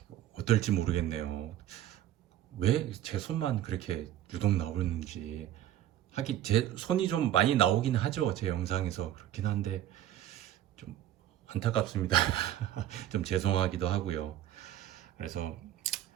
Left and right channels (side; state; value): left; quieter; 12.3 dB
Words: 어떨지 모르겠네요. 왜 제 손만 그렇게 유독 나오는지. 하긴 제 손이 좀 많이 나오긴 하죠, 제 영상에서. 그렇긴 한데 좀 안타깝습니다. 좀 죄송하기도 하고요. 그래서